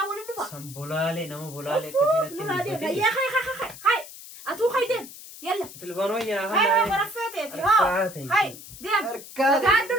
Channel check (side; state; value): left; noise; hiss, 15 dB below the sound